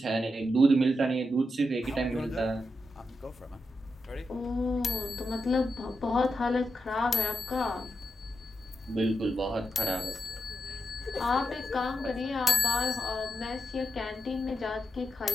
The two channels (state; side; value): normal; both; correlation 0.86